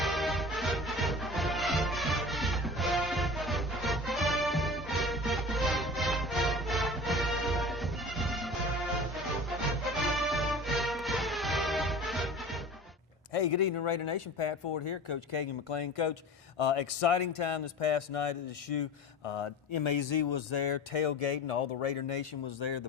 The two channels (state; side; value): normal; both; correlation 0.37